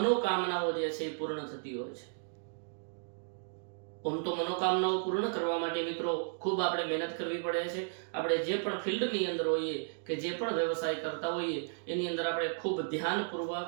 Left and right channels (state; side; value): silent; left; digital silence